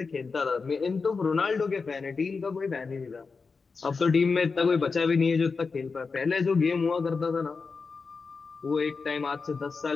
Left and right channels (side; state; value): right; quieter; 4.7 dB